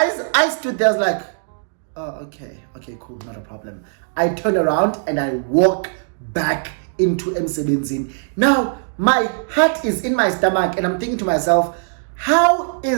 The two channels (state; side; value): silent; left; digital silence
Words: I stood there, I was like, oh, okay, cool, not a problem. I turn around and I walk back into Msebenzini. Now, my heart is in my stomach and I'm thinking to myself, how are